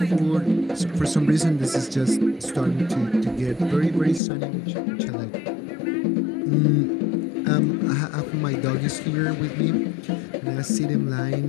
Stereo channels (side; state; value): right; drops out; at 4.2 s